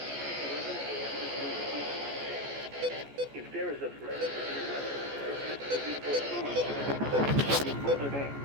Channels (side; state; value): left; late; 14 ms